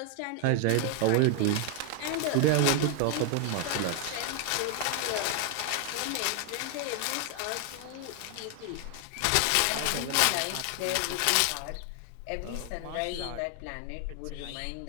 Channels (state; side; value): different; both; correlation 0.00